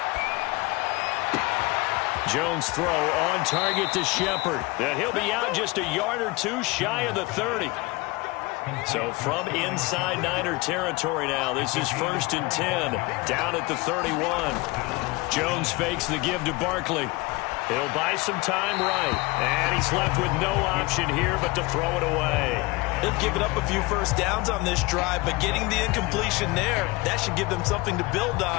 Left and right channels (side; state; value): right; quieter; 23.3 dB